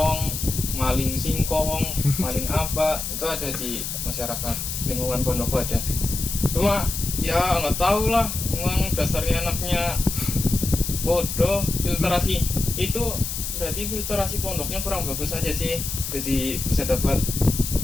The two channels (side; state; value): left; noise; hiss, 5 dB below the sound